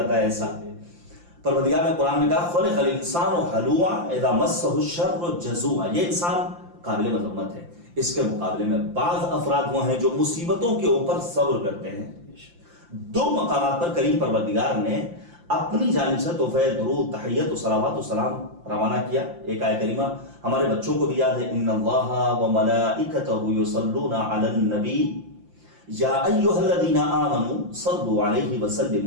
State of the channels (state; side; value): late; left; 5.8 ms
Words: ہے ایسا۔ پروردگار نے قرآن میں کہا خلق الانسان ہلوعا اذا مسہ الشر جزوعا، یہ انسان قابل مذمت ہے۔ اس کے مقابلے میں بعض افراد وہ ہیں جو مصیبتوں کے اوپر صبر کرتے ہیں۔ 2 مقامات پر کریم پروردگار نے اپنی جانب سے تحفہ درود، تحیت و صلوات و سلام روانہ کیا۔ ایک آیت کریمہ ہمارے بچوں کو بھی یاد ہے، ان اللہ وملائکتہ یصلون علی النبی یا ایھا الذین آمنوا صلوا علیہ